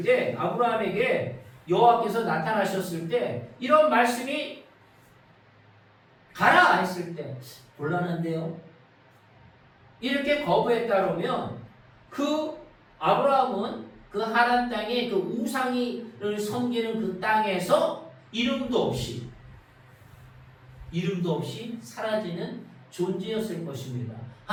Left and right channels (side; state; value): both; identical; correlation 1.00